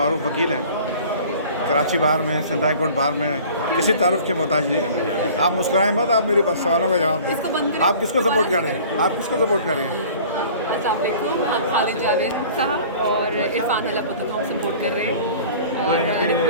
वकील हैं, कराची बार में, सिंध हाई कोर्ट बार में, किसी तारुफ के मोहताज नहीं। आप मुस्कुराएं मत, आप मेरी सवालों का जवाब दें। आप किसको सपोर्ट कर रहे हैं? आप किसको सपोर्ट कर रहे हैं? अस्सलाम वालेकुम, हम खालिद जावेद साहब और इरफान हलापुत्ता को हम सपोर्ट कर रहे हैं, और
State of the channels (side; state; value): both; inverted; correlation -0.46